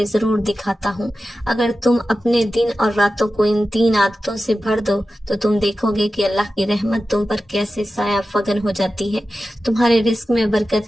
ضرور دکھاتا ہوں۔ اگر تم اپنے دن اور راتوں کو ان 3 عادتوں سے بھر دو تو تم دیکھو گے کہ اللہ کی رحمت تم پر کیسے سایہ فگن ہو جاتی ہے، تمہارے رزق میں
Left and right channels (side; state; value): both; normal; correlation 0.93